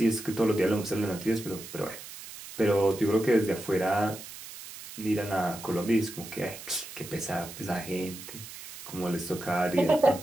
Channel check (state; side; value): noise; right; hiss, 13 dB below the sound